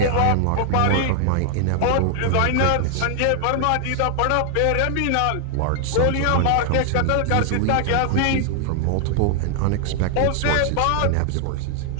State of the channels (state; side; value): different; both; correlation 0.00